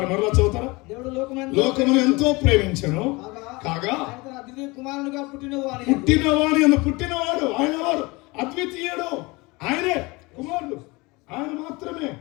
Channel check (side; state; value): right; quieter; 24.5 dB